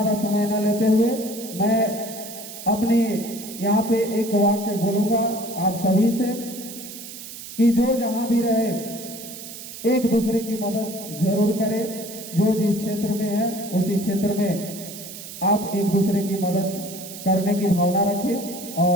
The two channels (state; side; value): noise; right; hiss, 12 dB below the sound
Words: समय न लेते हुए मैं अपने यहाँ पे एक वाक्य बोलूंगा आप सभी से कि जो जहां भी रहे एक दूसरे की मदद जरूर करें। जो जिस क्षेत्र में है उसी क्षेत्र में आप एक दूसरे की मदद करने की भावना रखें।